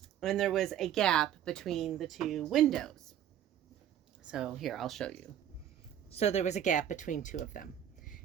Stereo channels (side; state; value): left; quieter; 10.4 dB